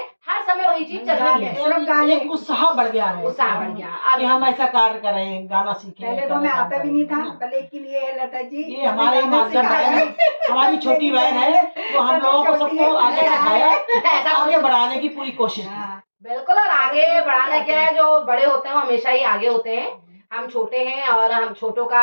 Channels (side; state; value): both; inverted; correlation -1.00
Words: हर समय वही चीज चल रही है। सिर्फ गाने। एक उत्साह बढ़ गया है, उत्साह बढ़ गया। कि हम ऐसा कार्य करें, गाना सीखें। पहले तो गाना हमें काम आता भी नहीं करें, था, पर लेकिन ये है लता जी, ये हमारे गाना माध्यम सिखाया। है, हमारी छोटी बहन है, वो हम लोगों को सबको आगे सिखाया, ऐसा आगे बढ़ाने की पूरी कोशिश की। हाँ, बिल्कुल। और आगे बढ़ाना क्या है, जो बड़े होते हैं वो हमेशा ही आगे होते हैं, हम छोटे हैं, और हम छोटों का